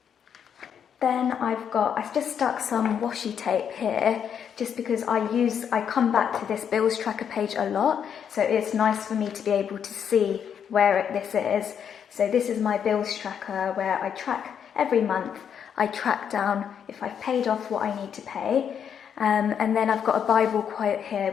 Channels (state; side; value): quieter; right; 8.1 dB